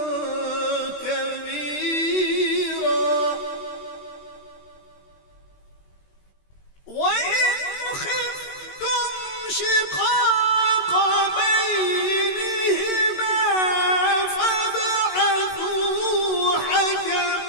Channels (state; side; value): late; right; 21 ms